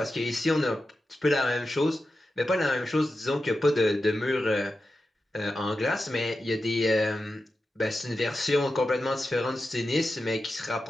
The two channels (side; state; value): both; normal; correlation 0.91